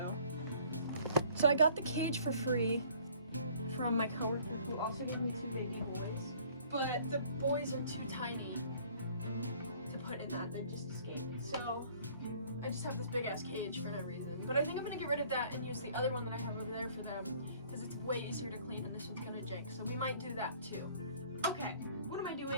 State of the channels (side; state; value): both; inverted; correlation -0.56